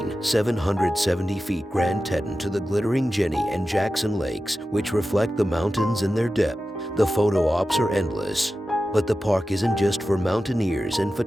770 feet Grand Teton to the glittering Jenny and Jackson Lakes, which reflect the mountains in their depth, the photo ops are endless. But the park isn't just for mountaineers and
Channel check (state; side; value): normal; both; correlation 0.93